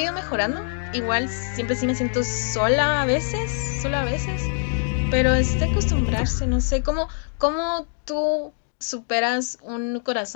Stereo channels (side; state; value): right; silent; 63 dB below the other